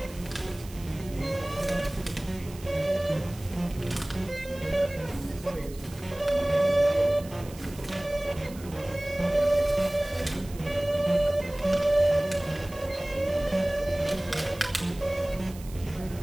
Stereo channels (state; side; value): noise; right; hiss, 19 dB below the sound